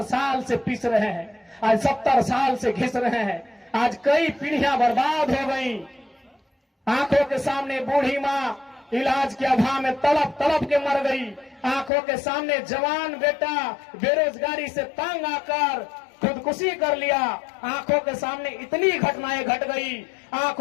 साल से पीस रहे हैं, आज 70 साल से घिस रहे हैं। आज कई पीढ़ियां बर्बाद हो गई। आंखों के सामने बूढ़ी माँ इलाज के अभाव में तड़प तड़प के मर गई। आंखों के सामने जवान बेटा बेरोजगारी से तंग आकर खुदकुशी कर लिया। आंखों के सामने इतनी घटनाएं घट गई,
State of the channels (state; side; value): drops out; right; at 11.9 s